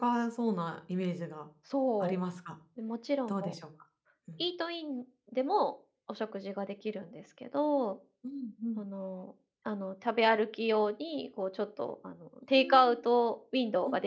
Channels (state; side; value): identical; both; correlation 1.00